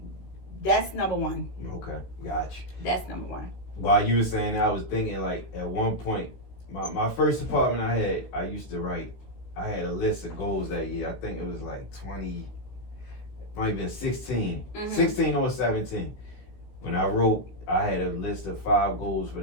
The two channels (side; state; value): right; late; 16 ms